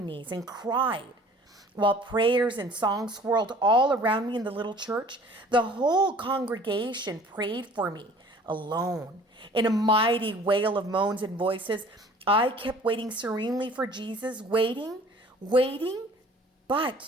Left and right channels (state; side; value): normal; both; correlation 0.50